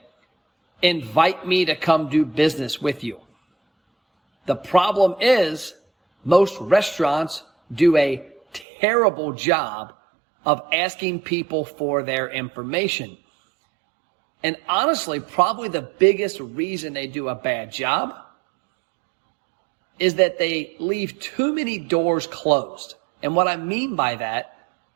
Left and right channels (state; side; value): drops out; left; at 8.7 s